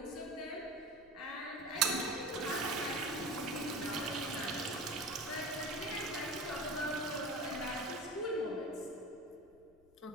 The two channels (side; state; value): left; noise; rumble, 28 dB below the sound